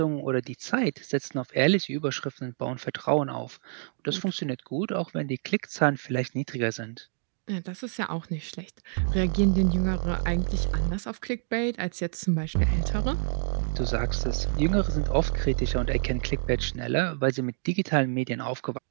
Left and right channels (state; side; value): silent; left; 60 dB below the other